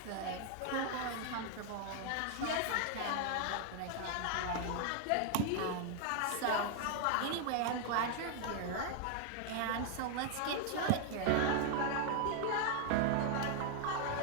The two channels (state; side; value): different; both; correlation 0.00